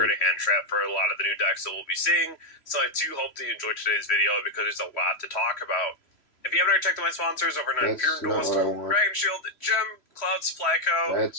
to hand trap for a lot of the new decks that we'll be seeing. So I do hope that you enjoyed today's video because there's a lot to talk about. If you haven't already checked out my sponsors over at Imperial Duelist, Dragon Shield, Gem, Cloud Supply Co.,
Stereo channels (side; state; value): right; late; 3.0 ms